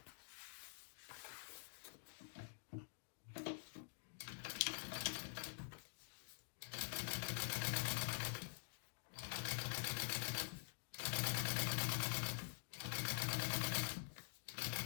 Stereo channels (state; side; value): silent; right; digital silence